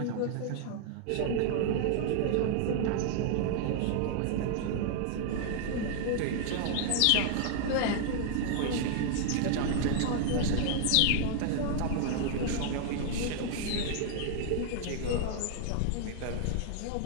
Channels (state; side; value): different; both; correlation 0.00